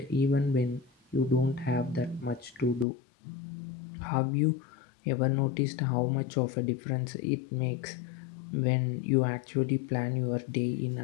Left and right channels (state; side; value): drops out; right; at 2.9 s